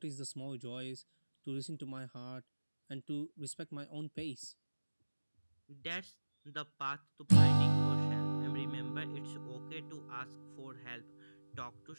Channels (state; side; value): inverted; both; correlation -1.00